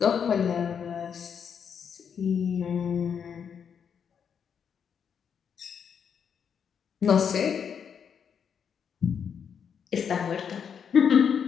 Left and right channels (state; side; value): quieter; right; 7.3 dB